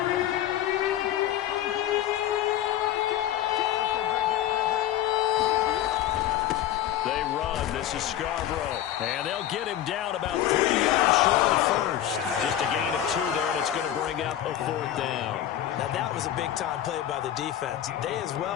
They run. This is Scarborough. And they'll get him down about 3 yards short of the first. Just a gain of 2 there, and it's going to bring up a 4th down. Now, that was a big-time play by the defense. They as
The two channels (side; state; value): right; quieter; 11.8 dB